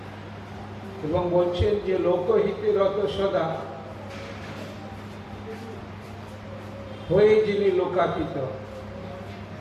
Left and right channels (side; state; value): both; identical; correlation 1.00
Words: এবং বলছেন যে লোকহিতে রত সদা হয়ে যিনি লোকাতীত,